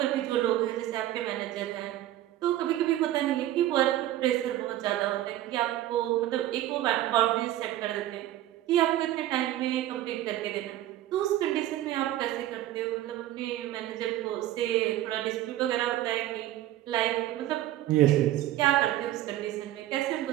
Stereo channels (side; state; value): left; quieter; 13.9 dB